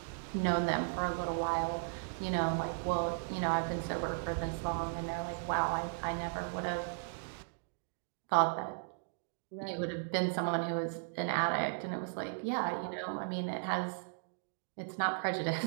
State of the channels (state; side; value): silent; left; digital silence